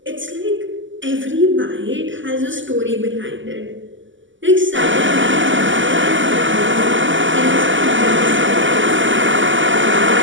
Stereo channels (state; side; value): late; left; 0.55 ms